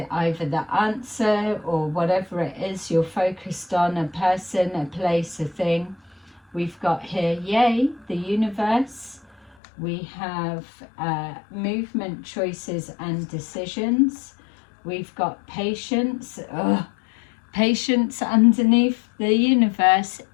either the answer or whatever it is you're focused on, a person, a place, a thing. We've got here, yay, the universe. We have movement, choices and decisions. We've got patience. Patience underneath the universe,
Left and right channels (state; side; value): drops out; right; at 9.6 s